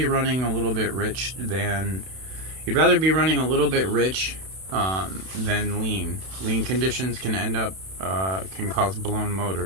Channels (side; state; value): left; late; 31 ms